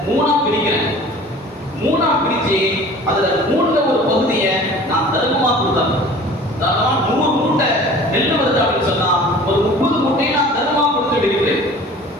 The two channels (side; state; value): both; normal; correlation 0.44